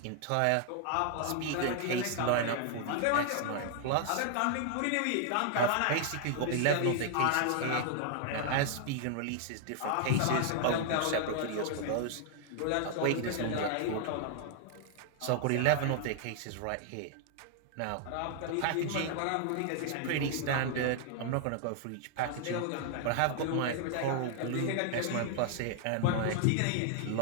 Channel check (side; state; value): both; different; correlation 0.00